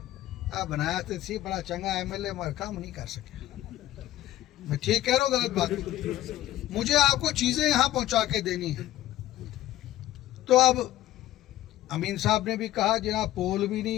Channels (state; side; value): quieter; right; 14.5 dB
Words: बनाया तो थी बड़ा चंगा MLA, मगर काम नहीं कर सके। मैं ठीक कह रहा हूँ, गलत बात? मुझे आपको चीज़ें यहाँ पहुँचा के देनी है। तो अब अमीन साहब ने भी कहा जनाब पोल भी नहीं